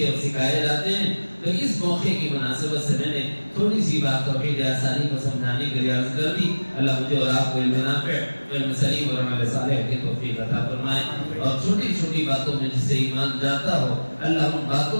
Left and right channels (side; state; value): both; inverted; correlation -1.00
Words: اور سکھائے جاتے ہیں، تو اس موقع کی مناسبت سے میں نے تھوڑی سی بات توحید آثاری کو سمجھانے کے لیے عرض کر دی۔ اللہ مجھے اور آپ کو علم نافع، علم سلیم اور عمل صالح کی توفیق عطا فرمائے، اور چھوٹی چھوٹی باتوں میں جس سے ایمان جاتا ہو اللہ ان